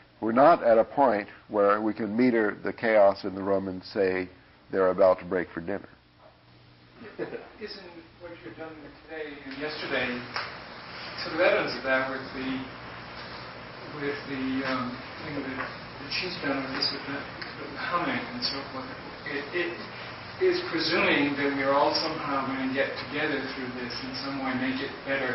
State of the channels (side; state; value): both; identical; correlation 1.00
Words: We're not at a point where we can meter the chaos in the room and say they're about to break for dinner. Isn't what you've done today and yesterday sort of evidence of that with the thing that she's done with this with the humming and so forth? It is presuming that we are all somehow going to get together through this in some way, make it